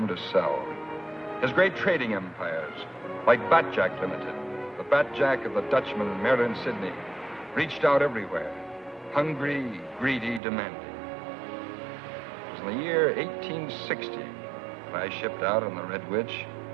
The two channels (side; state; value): left; drops out; at 10.4 s